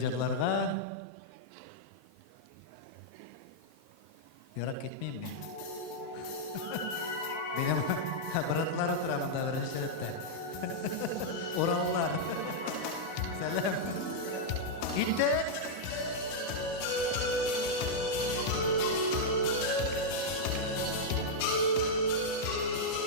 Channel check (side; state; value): right; late; 19 ms